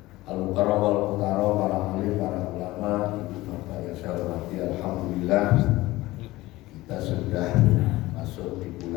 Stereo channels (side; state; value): right; quieter; 18.5 dB